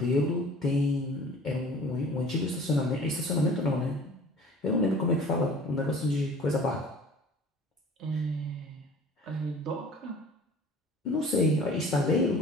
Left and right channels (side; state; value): both; normal; correlation 0.46